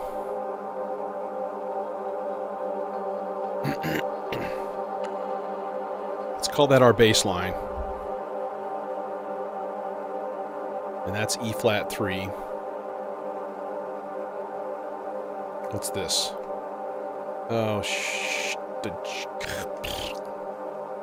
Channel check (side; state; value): both; identical; correlation 1.00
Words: Let's call that our bass line. And that's E flat 3. What's this? Oh,